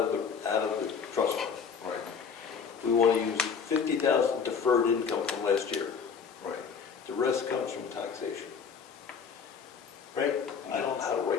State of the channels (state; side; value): quieter; right; 6.3 dB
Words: the trust fund. Right, We want to use 50,000 deferred income from last year. right. The rest comes from taxation. Right? I don't know how to